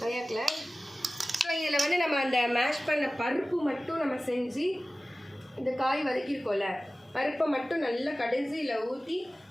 ஸோ இதில் வந்து நம்ம அந்த மேஷ் பண்ண பருப்பு மட்டும் நம்ம செஞ்சு இந்த காய் வதக்கியிருக்கோம்ல பருப்பை மட்டும் நல்லா கடைசியில் ஊற்றி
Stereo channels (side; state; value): both; normal; correlation 0.97